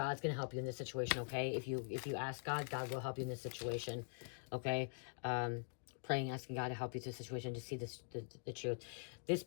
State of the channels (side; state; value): right; silent; digital silence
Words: going to help you in this situation, okay? If you ask God, God will help you in this situation, okay? Praying, asking God to help you through the situation to see the truth. This